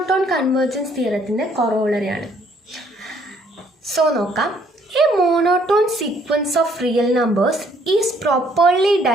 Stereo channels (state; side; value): normal; both; correlation 0.65